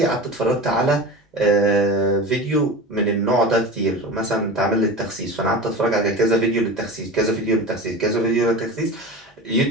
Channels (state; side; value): normal; both; correlation 0.31